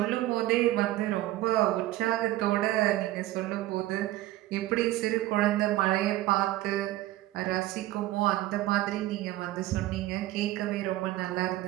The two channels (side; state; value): left; quieter; 16.1 dB